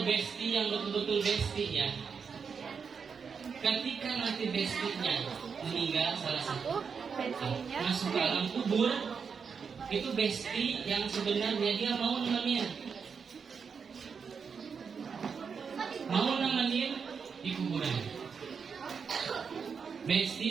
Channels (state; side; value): quieter; left; 6.0 dB